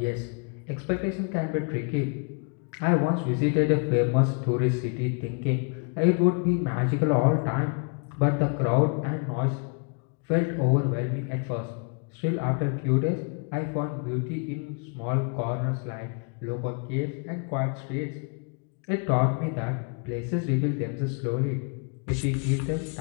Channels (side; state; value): right; quieter; 37.3 dB